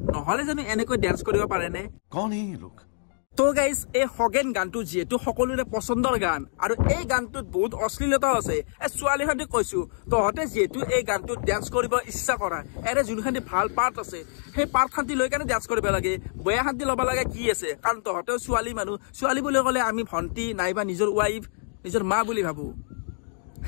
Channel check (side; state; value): right; silent; digital silence